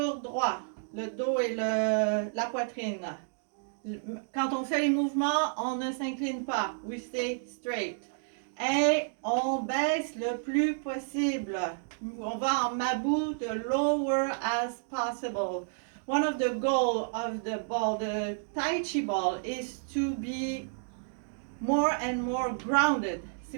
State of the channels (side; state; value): left; silent; digital silence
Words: droit. Le dos et la poitrine. Quand on fait les mouvements, on ne s'incline pas. We stay straight. Et on baisse le plus possible. On va en mabou, the lower as possible. One of the goals of the ball, the Tai Chi ball, is to be more and more grounded.